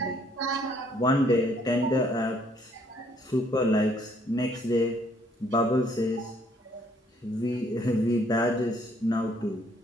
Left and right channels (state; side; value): normal; both; correlation 0.65